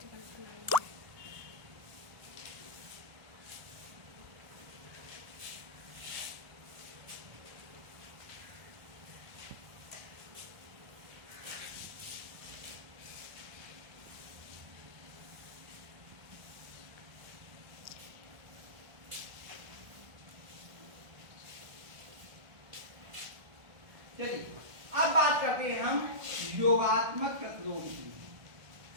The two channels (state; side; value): late; left; 1.4 ms